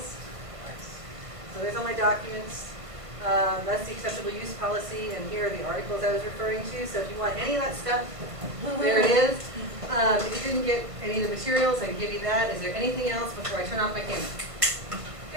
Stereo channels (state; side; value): late; left; 1.5 ms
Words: So there's all my documents. That's the acceptable use policy, and here are the articles I was referring to. So if you want any of that stuff, there it is. If you didn't get any of the materials, I can give you that. Is there anything else before I turn off my camera?